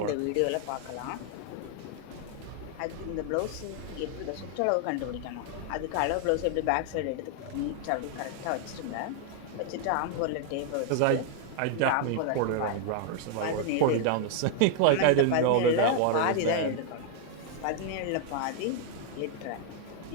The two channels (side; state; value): both; different; correlation 0.00